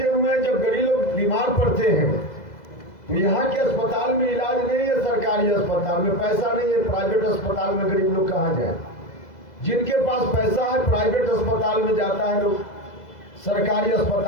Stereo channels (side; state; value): right; late; 2.0 ms